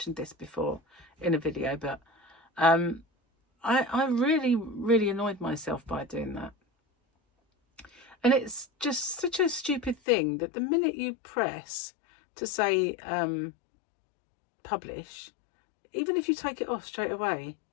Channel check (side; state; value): right; drops out; at 10.0 s